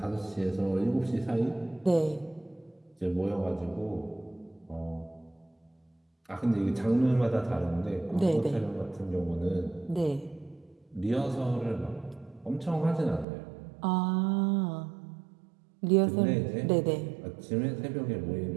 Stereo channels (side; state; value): left; drops out; at 13.2 s